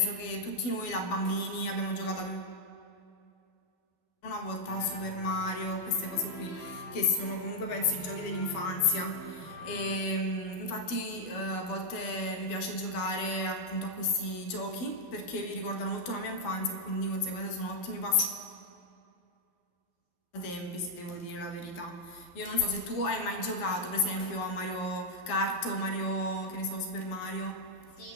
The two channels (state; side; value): late; right; 12 ms